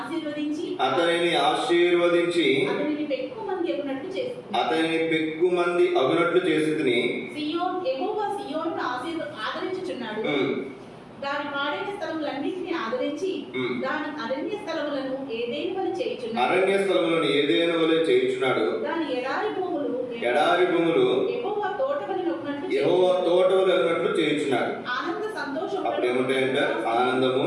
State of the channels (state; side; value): identical; both; correlation 1.00